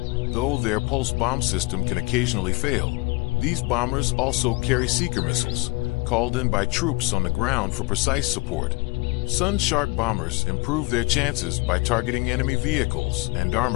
Though their pulse bomb system can occasionally fail, these bombers also carry seeker missiles, called in by troops on the ground for precise support. Sun Shark bombers improve their chances by targeting enemy vehicles and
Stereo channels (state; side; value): quieter; right; 25.0 dB